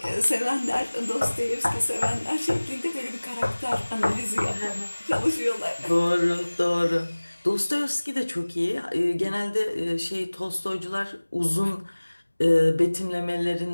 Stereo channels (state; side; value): inverted; both; correlation -1.00